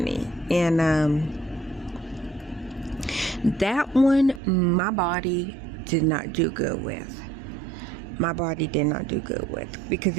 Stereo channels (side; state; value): left; drops out; at 4.4 s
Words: and that one my body did not do good with. Because